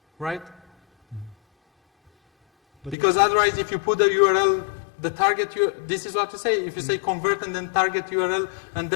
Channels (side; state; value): right; drops out; at 3.0 s